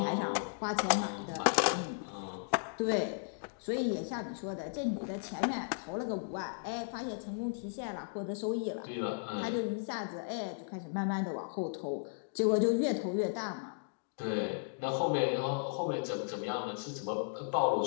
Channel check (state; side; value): silent; right; digital silence